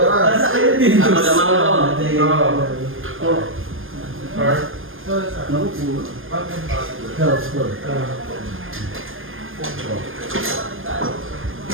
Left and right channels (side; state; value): left; late; 0.59 ms